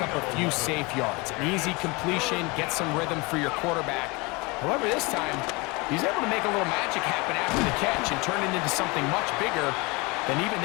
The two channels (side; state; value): right; quieter; 26.2 dB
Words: up a few safe yards. An easy completion, get some rhythm for your quarterback. However, this time, he's able to make a little magic happen after the catch and turn it into something much bigger than even